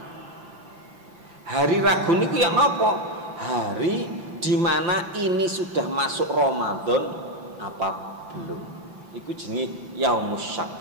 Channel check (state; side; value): late; left; 5.9 ms